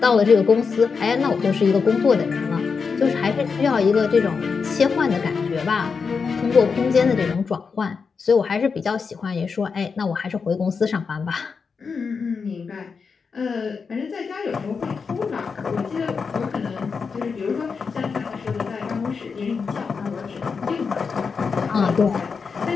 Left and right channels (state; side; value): quieter; right; 5.4 dB